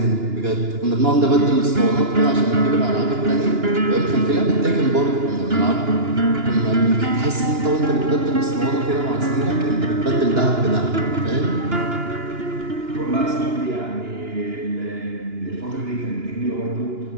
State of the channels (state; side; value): late; left; 2.9 ms